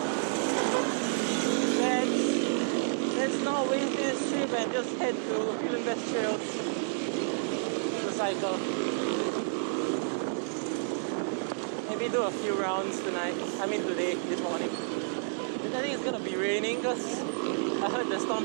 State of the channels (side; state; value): left; silent; digital silence